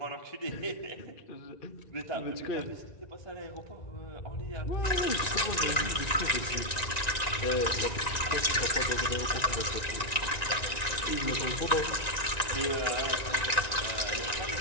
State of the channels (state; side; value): late; right; 1.9 ms